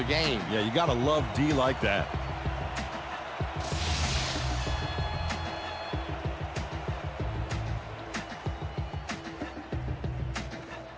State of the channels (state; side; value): identical; both; correlation 1.00